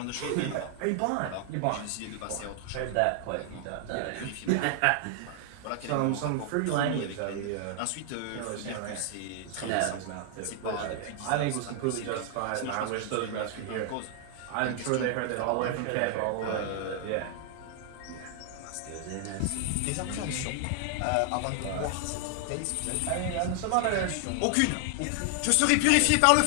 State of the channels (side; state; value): both; different; correlation 0.00